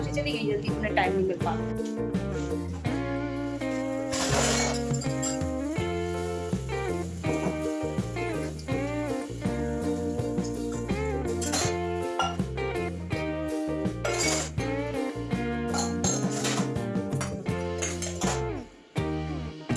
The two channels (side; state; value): both; identical; correlation 1.00